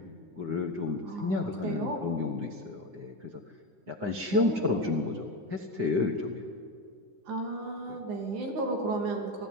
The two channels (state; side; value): late; left; 9.8 ms